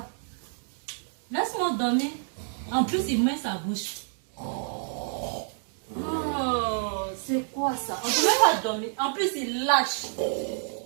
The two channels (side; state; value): left; silent; 59 dB below the other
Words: Laisse-moi dormir. En plus, il met sa bouche. Oh, c'est quoi ça? On ne peut même pas dormir. En plus, il lâche.